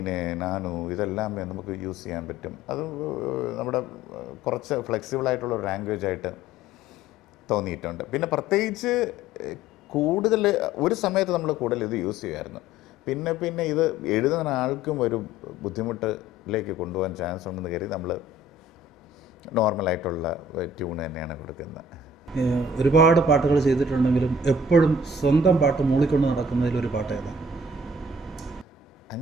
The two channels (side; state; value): both; normal; correlation 0.52